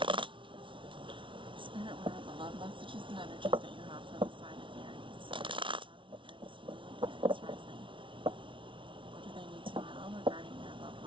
Spirit, what are the love messages and energies that you have for the sign of Aries? Aries Moon, Aries Rising. What do they need to know regarding their love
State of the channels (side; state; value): left; late; 0.25 ms